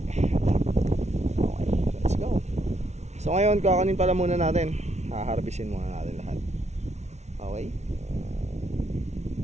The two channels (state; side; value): late; left; 0.32 ms